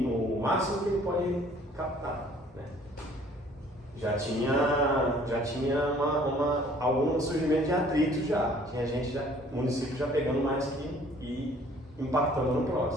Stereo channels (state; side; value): normal; both; correlation 0.56